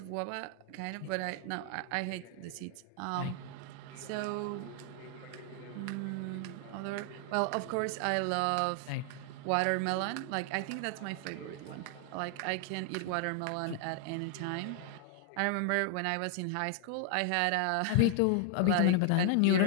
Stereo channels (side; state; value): both; different; correlation 0.00